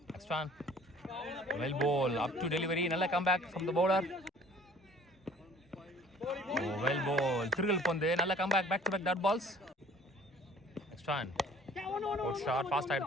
Next one well ball up to delivery. நல்ல comeback from the bowler. Well ball திருகல் பந்து. நல்ல comeback, back to back dot balls. Next one good shot, fast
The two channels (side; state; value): both; normal; correlation 0.52